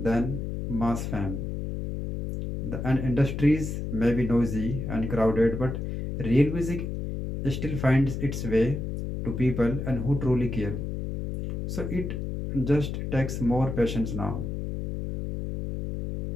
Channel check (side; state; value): left; noise; hum, 4 dB below the sound